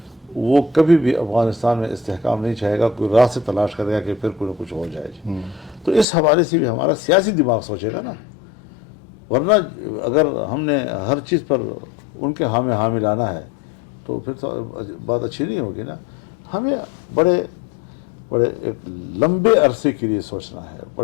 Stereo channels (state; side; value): drops out; right; at 6.1 s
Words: وہ کبھی بھی افغانستان میں استحکام نہیں چاہے گا، کوئی راہ سے تلاش کرے گا کہ پھر کوئی نہ کچھ ہو جائے جی۔ تو اس حوالے سے بھی ہمارا سیاسی دماغ سوچے گا نا، ورنہ اگر ہم نے ہر چیز پر ان کے ہاں میں لانا ہے تو پھر تو بات اچھی نہیں ہوگی نا۔ ہمیں بڑے ایک لمبے عرصے کے لیے سوچنا ہے،